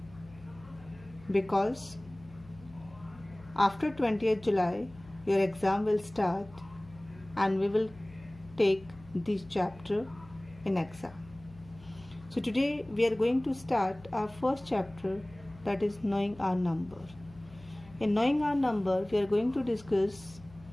because after 20th July, your exam will start and we will take this chapter in exam. So today we are going to start our first chapter, that is Knowing Our Number. In Knowing Our Number, we are going to discuss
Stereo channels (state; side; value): noise; left; hum, 21 dB below the sound